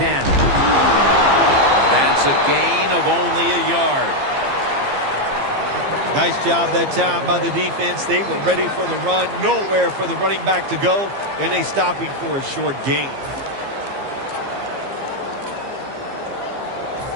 That's a gain of only a yard. Nice job that time by the defense. They were ready for the run. Nowhere for the running back to go. And they stop him for a short gain.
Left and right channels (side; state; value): left; late; 15 ms